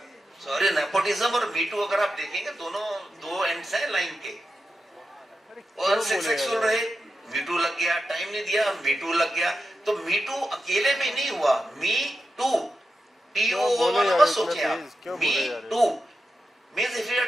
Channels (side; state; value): both; normal; correlation 0.89